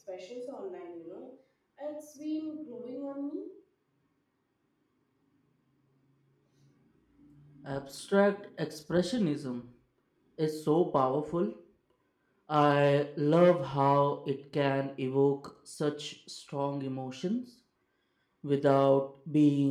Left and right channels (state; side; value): identical; both; correlation 1.00